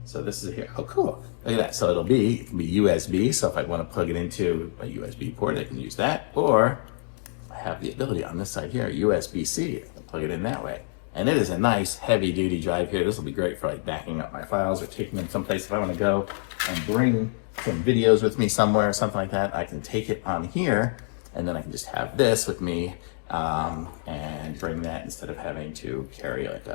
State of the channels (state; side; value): silent; right; digital silence